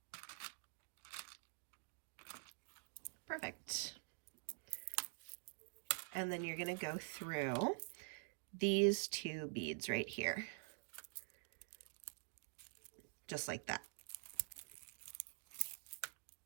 Perfect. And then you're going to go through these 2 beads right here. Just like that.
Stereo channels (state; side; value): silent; left; digital silence